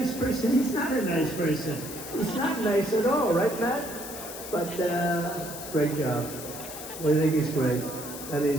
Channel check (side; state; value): left; noise; hiss, 10 dB below the sound